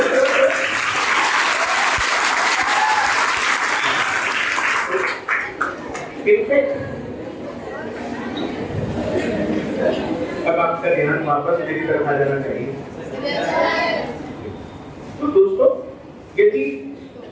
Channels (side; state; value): both; identical; correlation 1.00